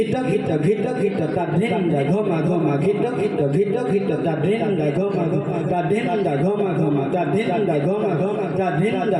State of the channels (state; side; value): identical; both; correlation 1.00